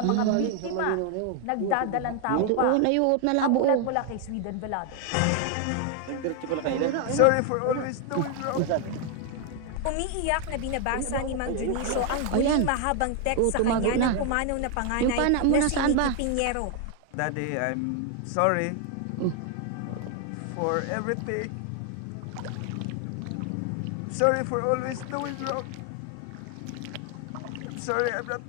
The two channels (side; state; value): both; different; correlation 0.01